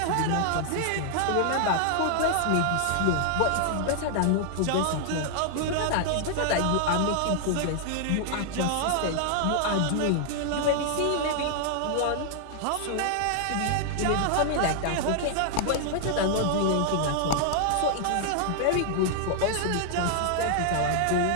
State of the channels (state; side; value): different; both; correlation 0.00